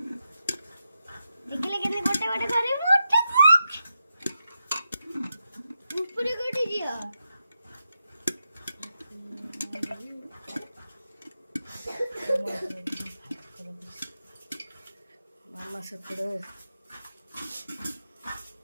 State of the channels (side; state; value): both; inverted; correlation -0.87